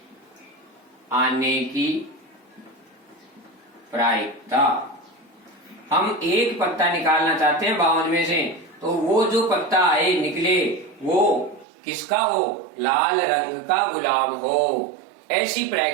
आने की प्रायिकता। हम एक पत्ता निकालना चाहते हैं 52 में से, तो वो जो पत्ता आए निकले वो किसका हो? लाल रंग का गुलाम हो। ऐसी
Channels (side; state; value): left; drops out; at 11.7 s